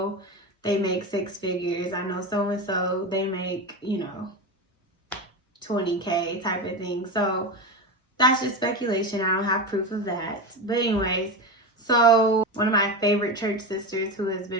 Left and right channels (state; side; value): normal; both; correlation 0.20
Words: they make 6 figures. I know so and so, they make 20K, type of thing. So that's just speculation. I don't have proof of that. But anyways, so one of my favorite church sisters, who has